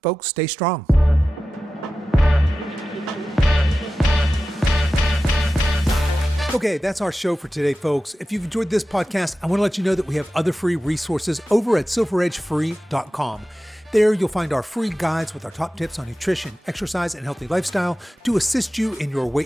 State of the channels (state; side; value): normal; both; correlation 0.94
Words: folks, stay strong. Okay, that's our show for today, folks. If you've enjoyed this podcast, I want to let you know that we have other free resources over at silveredgefree.com. There, you'll find our free guides with our top tips on nutrition, exercise, and healthy lifestyle to assist you in your